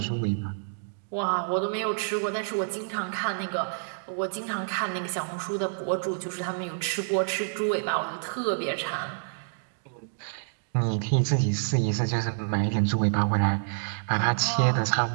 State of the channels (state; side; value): silent; left; digital silence